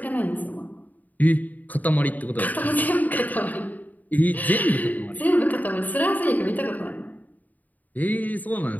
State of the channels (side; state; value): right; late; 0.080 ms